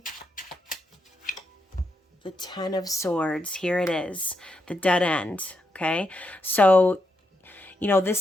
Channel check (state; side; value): normal; both; correlation 0.82